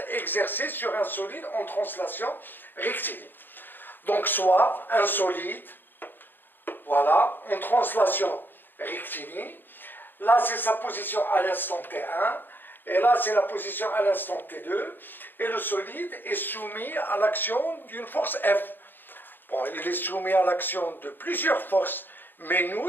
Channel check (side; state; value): right; late; 0.094 ms